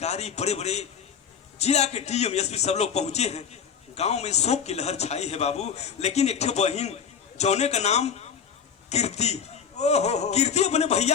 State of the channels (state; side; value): quieter; right; 7.3 dB